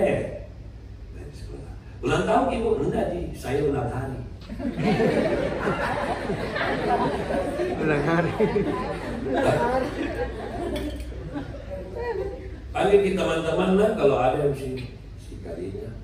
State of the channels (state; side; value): identical; both; correlation 1.00